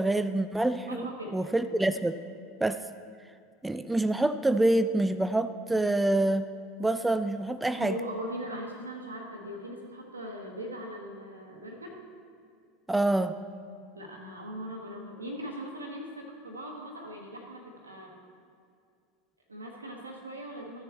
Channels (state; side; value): normal; both; correlation 0.83